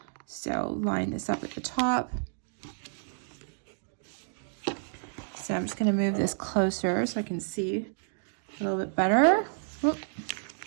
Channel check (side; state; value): left; silent; digital silence